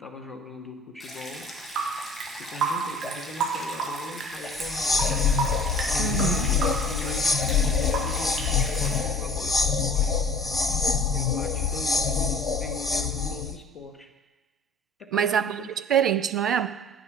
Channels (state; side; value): normal; both; correlation 0.47